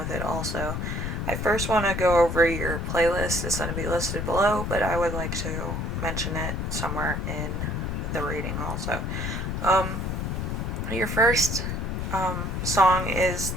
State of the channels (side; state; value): left; noise; rumble, 2 dB below the sound